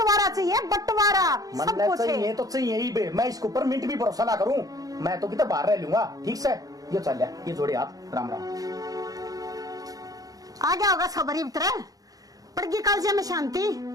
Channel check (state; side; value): late; left; 0.18 ms